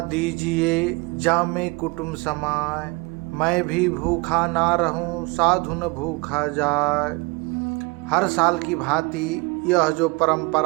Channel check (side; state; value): left; quieter; 26.6 dB